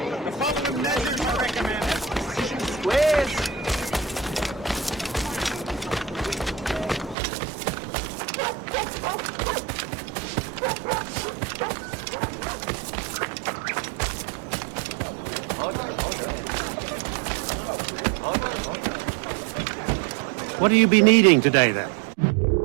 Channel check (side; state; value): left; drops out; at 7.2 s